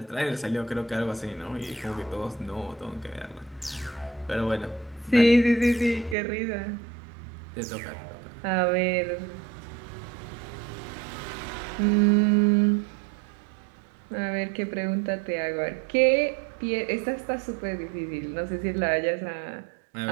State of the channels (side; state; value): left; drops out; at 6.2 s